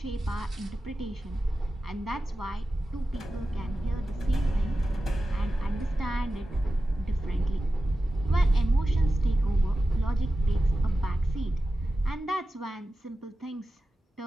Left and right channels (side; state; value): both; normal; correlation 0.93